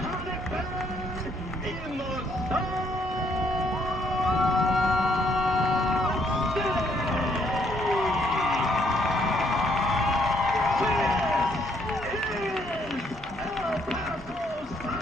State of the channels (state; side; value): normal; both; correlation 0.69